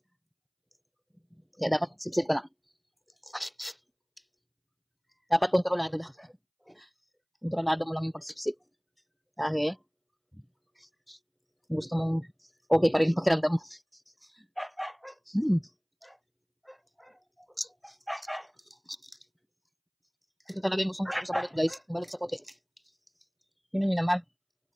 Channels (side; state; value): both; identical; correlation 1.00